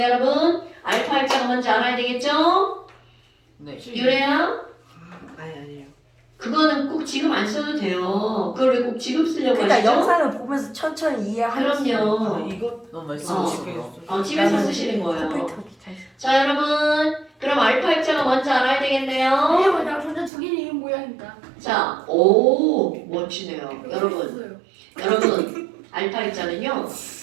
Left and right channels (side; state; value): left; drops out; at 20.3 s